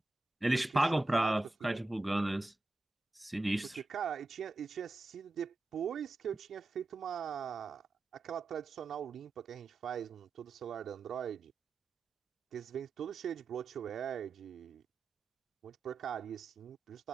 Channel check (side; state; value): left; quieter; 3.1 dB